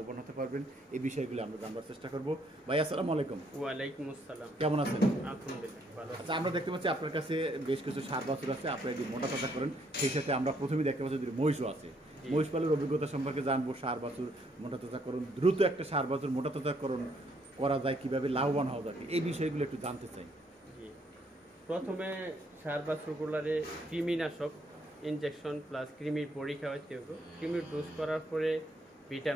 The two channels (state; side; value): normal; both; correlation 0.69